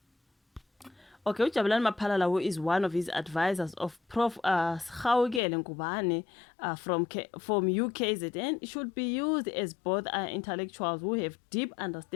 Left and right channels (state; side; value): drops out; right; at 5.4 s